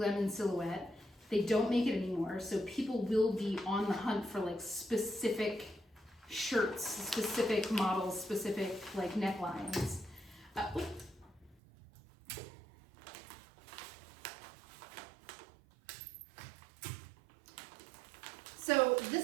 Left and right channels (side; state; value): left; drops out; at 11.6 s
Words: silhouette. They don't make it anymore, so people will be on the hunt for like specific shirts, specific models, specific like necklines. So